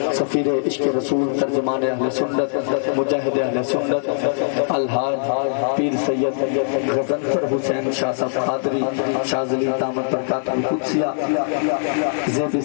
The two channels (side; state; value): right; silent; digital silence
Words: سفیر عشق رسول ترجمان اہل سنت مجاہد اہل سنت الحاج پیر سید غزنفر حسین شاہ صاحب قادری شاذلی دامت برکات القدسیہ زیب